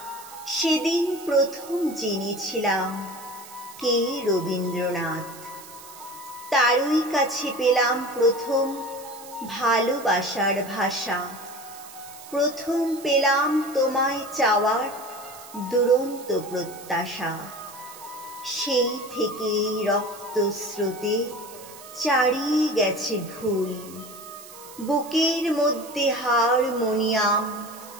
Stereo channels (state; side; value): noise; right; hiss, 17 dB below the sound